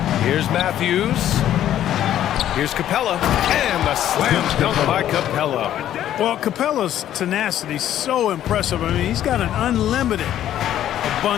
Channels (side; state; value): right; quieter; 11.6 dB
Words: Here's Matthews. Here's Capella. And the slam dunk by Capella. Well, Capella's tenacity is so impressive. I mean, he's got an unlimited